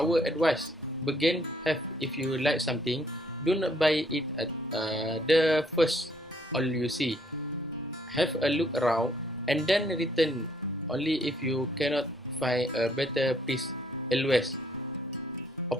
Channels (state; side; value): normal; both; correlation 0.66